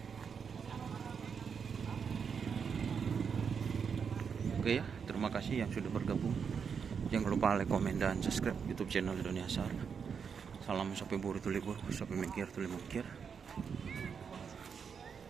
Oke ya, terima kasih yang sudah bergabung. Jangan lupa like, komen, dan subscribe YouTube channel Indonesia. Salam sapi buru tulibur, sapi mengkir tuli mengkir.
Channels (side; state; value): left; quieter; 6.5 dB